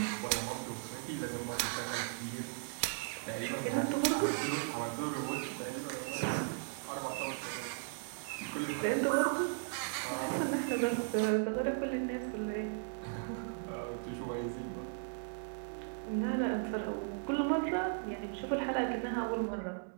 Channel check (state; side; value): silent; left; digital silence